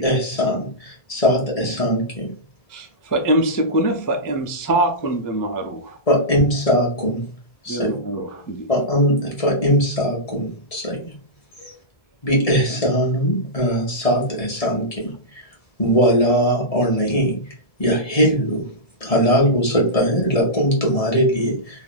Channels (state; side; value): late; right; 1.7 ms